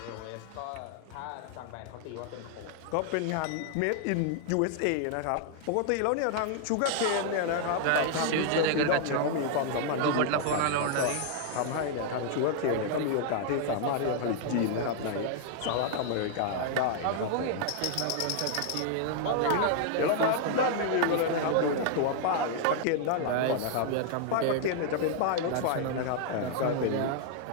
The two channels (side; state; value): both; different; correlation 0.00